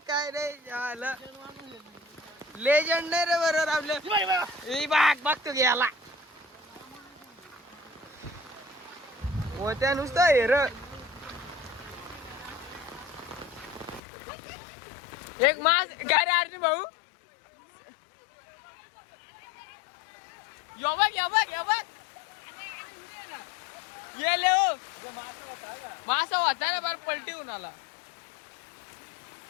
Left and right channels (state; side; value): drops out; right; at 14.0 s